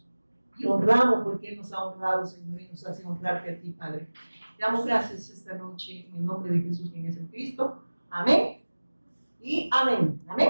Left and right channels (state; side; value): inverted; both; correlation -1.00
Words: y honramos, porque Él nos ha honrado, Señor, y nos hace honrarte a ti, Padre. Te damos gracias esta noche en el nombre de Jesús, quien es el Cristo. Amén y amén.